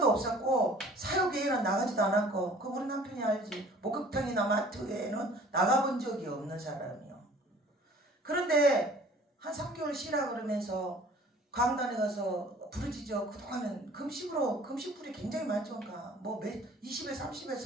없었고 사역회에는 나가지도 않았고 그 우리 남편이 알지. 목욕탕이나 마트에는 나가본 적이 없는 사람이요. 그런데 한 3개월 쉬라 그러면서 강단에 가서 부르짖어. 그동안은 금식불이 굉장히 많죠. 뭐 20일, 30일,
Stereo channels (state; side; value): normal; both; correlation 0.50